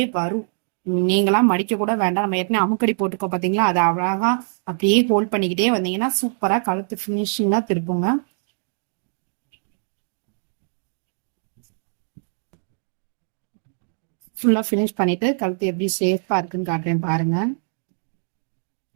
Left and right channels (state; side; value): silent; left; digital silence